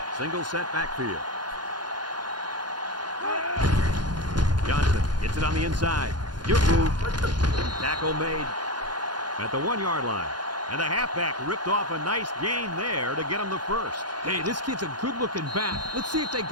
Single set backfield. Johnson gets it on the inside. Good move. Tackle made at the 1-yard line. And the halfback ripped off a nice gain there to get him the first. Hey, this kid's a good-looking back. Let's see if they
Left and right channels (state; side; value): late; left; 0.70 ms